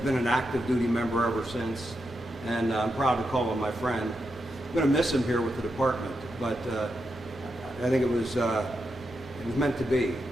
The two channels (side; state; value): both; normal; correlation 0.86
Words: an active duty member ever since, and I'm proud to call him my friend. I'm going to miss him here with the department, but I think it was meant to be